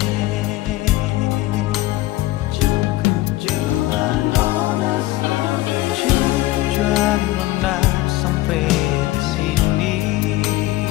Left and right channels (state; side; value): quieter; right; 17.5 dB